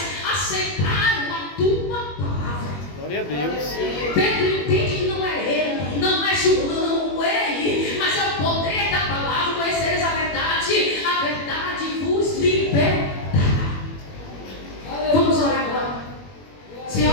aceitaram a tua palavra. Glória a Deus. Pedro entende que não é ele, não é João, ele, mas é o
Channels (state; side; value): late; right; 21 ms